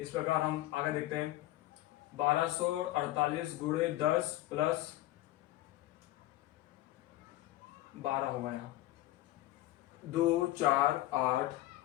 प्रकार हम आगे देखते हैं। 1248 गुणे 10 प्लस 12 होगा यहाँ 2 4 8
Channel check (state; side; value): quieter; right; 16.0 dB